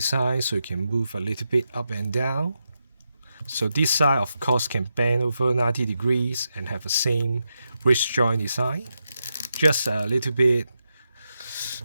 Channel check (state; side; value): inverted; both; correlation -0.86